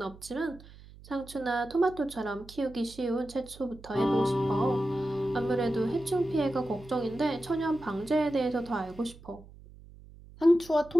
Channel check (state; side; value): noise; right; hum, 20 dB below the sound